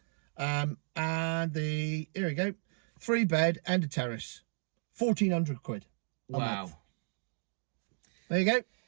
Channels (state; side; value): silent; left; 55 dB below the other